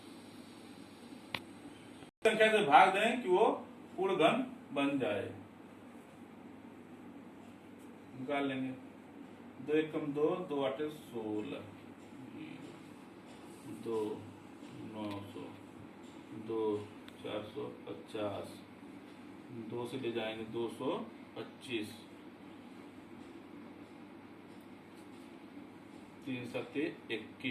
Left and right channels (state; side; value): identical; both; correlation 1.00